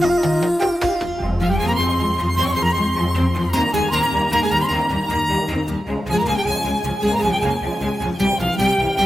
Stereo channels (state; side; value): normal; both; correlation 0.92